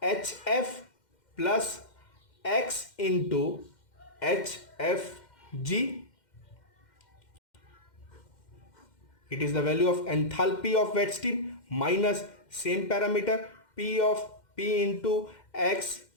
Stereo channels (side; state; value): right; late; 2.1 ms